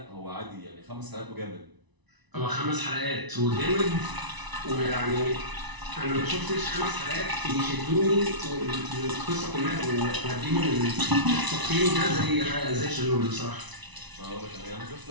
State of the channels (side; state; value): left; late; 1.0 ms